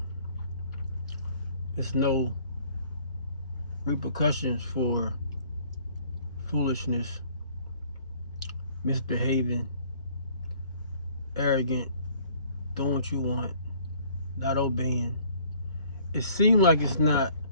there's no repercussions for foolishness, misbehaving, arrogant, doing what you want, not obeying. It seems like it's not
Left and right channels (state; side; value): inverted; both; correlation -0.57